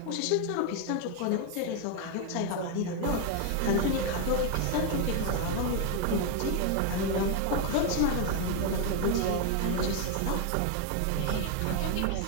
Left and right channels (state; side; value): different; both; correlation 0.01